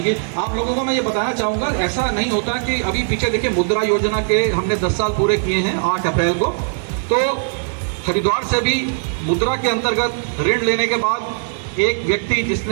आप लोगों को मैं ये बताना चाहूँगा, ऐसा नहीं होता कि अभी पीछे देखिए मुद्रा योजना के हमने 10 साल पूरे किए हैं 8 अप्रैल को, तो हरिद्वार से भी मुद्रा के अंतर्गत ऋण लेने के बाद एक व्यक्ति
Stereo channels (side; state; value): left; silent; digital silence